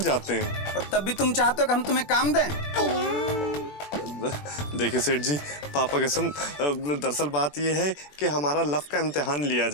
जाते हैं। और तब भी तुम चाहते हो कि हम तुम्हें काम दें? देखिए सेठ जी पापा कसम, दरअसल बात यह है कि हमारा लव का इम्तिहान लिया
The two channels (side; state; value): right; late; 21 ms